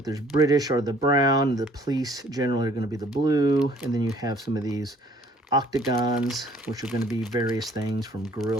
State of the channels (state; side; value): normal; both; correlation 0.58